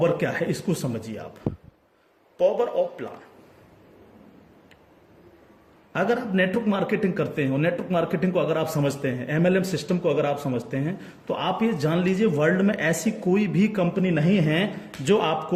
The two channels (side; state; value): both; identical; correlation 1.00